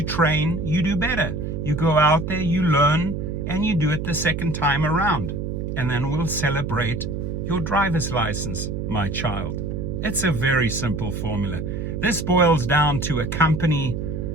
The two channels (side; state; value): right; noise; hum, 4 dB below the sound